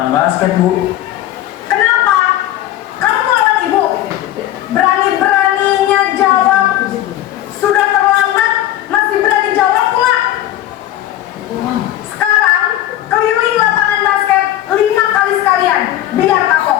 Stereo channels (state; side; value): quieter; right; 13.4 dB